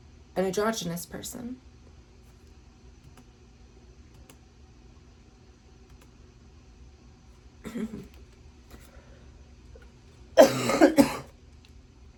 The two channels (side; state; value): both; identical; correlation 1.00